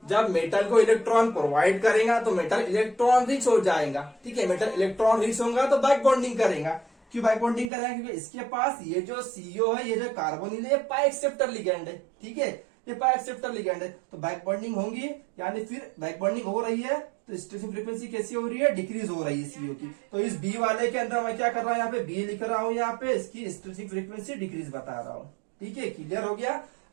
जब मेटल को इलेक्ट्रॉन प्रोवाइड करेगा तो मेटल इलेक्ट्रॉन रिच हो जाएगा, ठीक है। मेटल इलेक्ट्रॉन रिच होगा तो बैक बॉन्डिंग करेगा। क्यों बैक बॉन्डिंग करेगा, क्योंकि इसके पास ये जो CO है, ये जो कार्बोनिल है, ये पाई एक्सेप्टर लिगैंड है, ठीक है, ये पाई एक्सेप्टर लिगैंड है, तो बैक बॉन्डिंग होंगी, यानी फिर बैक बॉन्डिंग हो रही है तो स्ट्रेचिंग फ्रीक्वेंसी कैसी हो रही है, डिक्रीज हो रही है CO की। तो इस B वाले के अंदर मैं क्या कर रहा हूँ, यहाँ पे B लिख रहा हूँ, यहाँ पे इसकी स्ट्रेचिंग फ्रीक्वेंसी डिक्रीज बता रहा हूँ, ठीक है। क्लियर हो गया,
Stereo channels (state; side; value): drops out; left; at 7.7 s